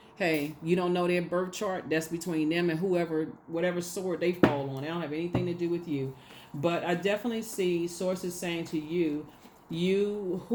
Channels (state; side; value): identical; both; correlation 1.00